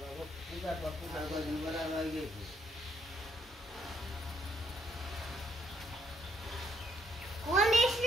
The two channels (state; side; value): normal; both; correlation 0.70